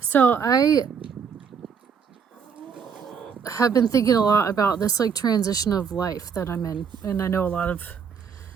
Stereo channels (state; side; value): quieter; left; 6.7 dB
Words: I have been thinking a lot about this like transition of life that I'm in. And I know a lot of